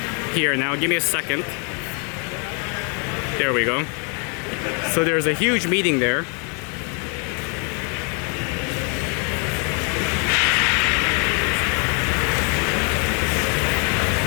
here now. Give me a second. There we go. So there's a huge meeting there.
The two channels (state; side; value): quieter; right; 37.4 dB